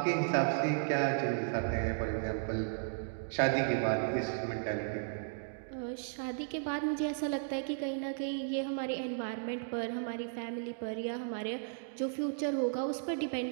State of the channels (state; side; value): silent; left; digital silence